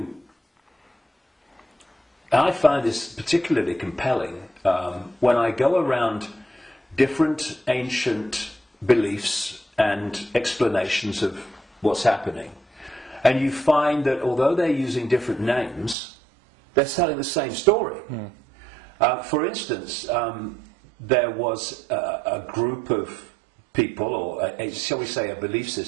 I find this particularly compelling when I go around different ancient beliefs and explanations of what's happening, and you find that although they're using different names, they're telling the same story. For instance, there was a group of people, or shall we say a belief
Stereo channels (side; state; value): left; drops out; at 16.0 s